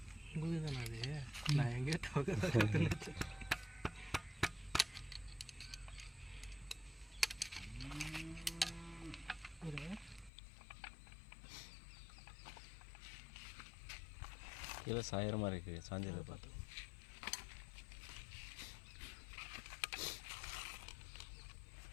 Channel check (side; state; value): right; drops out; at 10.3 s